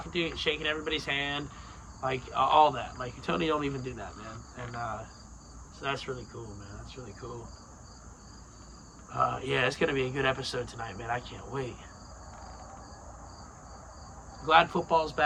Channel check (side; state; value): both; identical; correlation 1.00